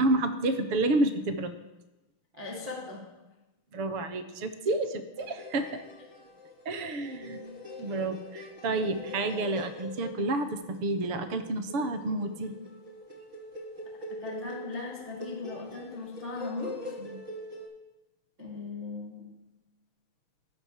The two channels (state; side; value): late; left; 6.9 ms